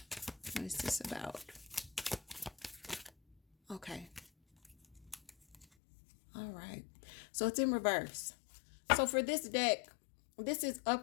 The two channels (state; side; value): drops out; right; at 5.7 s